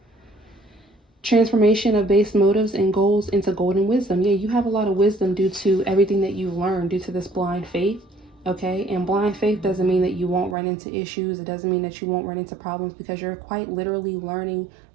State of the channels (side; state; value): left; drops out; at 10.6 s